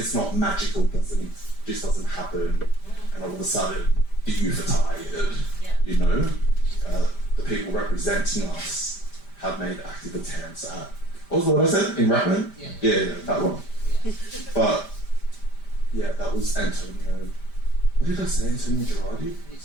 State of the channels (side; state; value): right; late; 5.0 ms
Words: not magical, just doesn't happen, and all of a sudden the youth are tired. You know, the people representing us have made active attempts at. What was the word I said in Rattler? Yeah, that one. But yeah, that was Antonio. What did I say? Antonio Girardi?